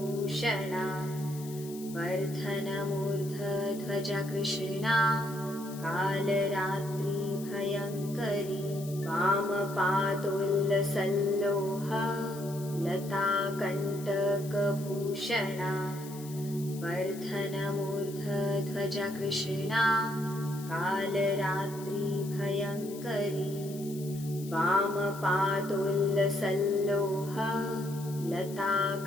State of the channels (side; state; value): left; noise; hiss, 16 dB below the sound